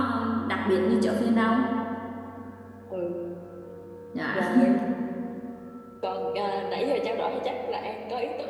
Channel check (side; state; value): both; identical; correlation 1.00